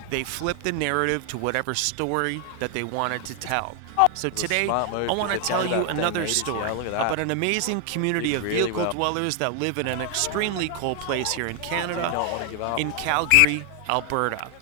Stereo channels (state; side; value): different; both; correlation 0.00